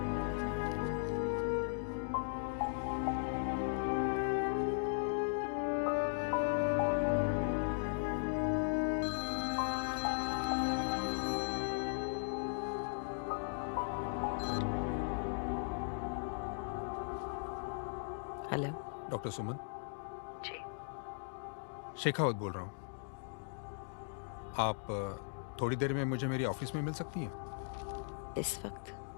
हेलो डॉक्टर सुमन। जी। शेखावत बोल रहा हूँ। आप थोड़ी देर में मुझे मेरी ऑफिस में मिल सकती हैं? इस वक्त?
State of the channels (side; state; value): right; silent; digital silence